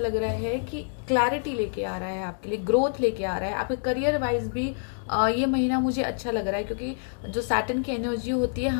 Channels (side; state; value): right; silent; digital silence